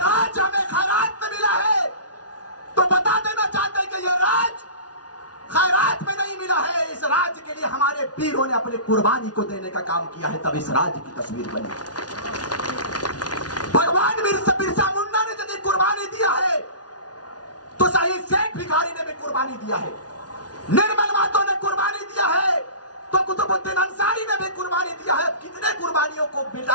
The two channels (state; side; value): late; right; 0.69 ms